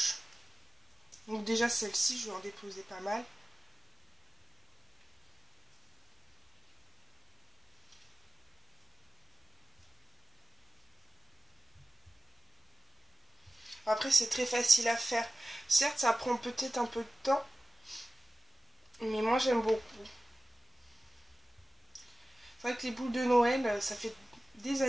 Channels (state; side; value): normal; both; correlation 0.96